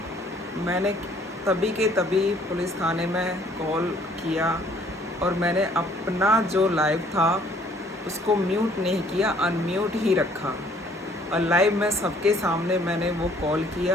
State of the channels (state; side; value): normal; both; correlation 0.59